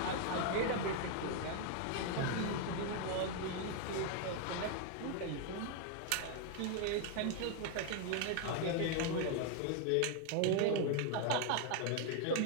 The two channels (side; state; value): both; different; correlation 0.00